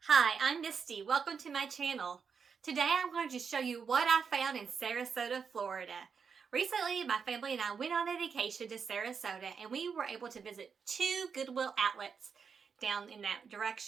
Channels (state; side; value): quieter; left; 6.1 dB